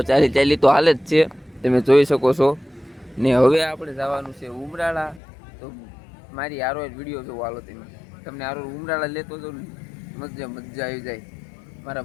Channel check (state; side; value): drops out; right; at 5.2 s